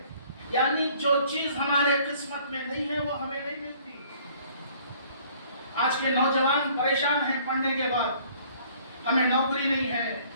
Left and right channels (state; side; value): inverted; both; correlation -0.57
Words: यानी जो चीज हमारे किस्मत में नहीं है वो हमें नहीं मिलती। आज के नौजवान परेशान हैं पढ़ने के बाद, हमें नौकरी नहीं है,